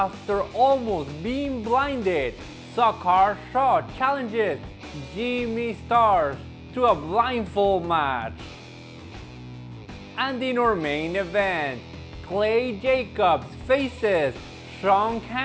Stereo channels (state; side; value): identical; both; correlation 1.00